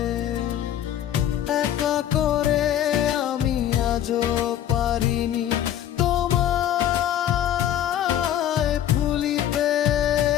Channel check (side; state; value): right; quieter; 11.0 dB